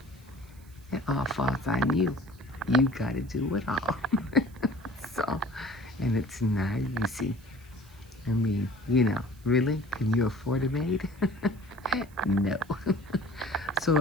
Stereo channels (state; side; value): noise; right; hiss, 27 dB below the sound